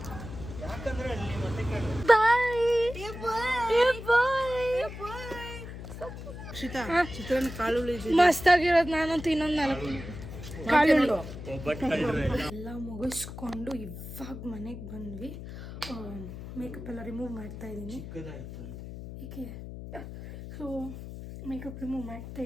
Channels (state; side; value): noise; left; hum, 11 dB below the sound